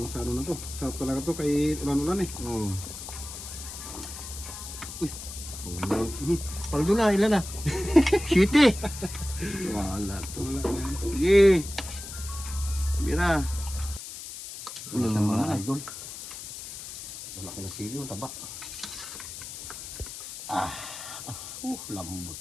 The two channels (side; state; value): left; noise; hiss, 10 dB below the sound